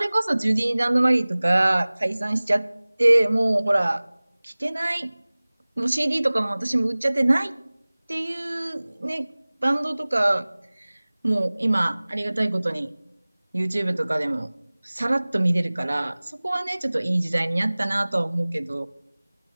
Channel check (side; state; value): both; inverted; correlation -1.00